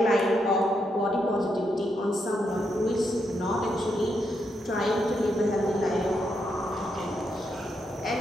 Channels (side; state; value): both; normal; correlation 0.81